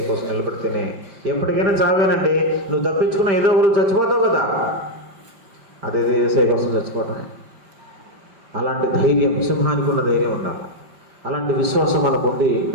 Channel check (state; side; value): late; left; 5.1 ms